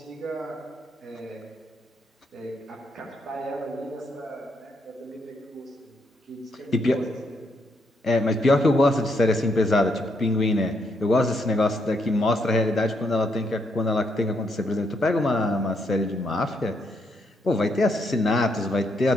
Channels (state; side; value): normal; both; correlation 0.76